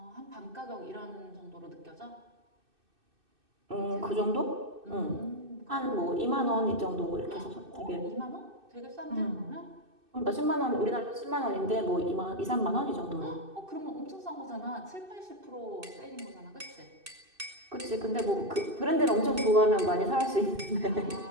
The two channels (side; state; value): left; late; 2.6 ms